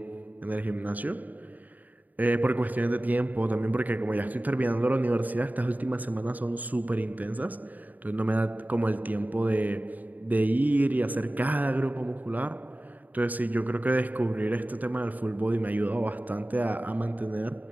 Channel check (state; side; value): late; left; 0.080 ms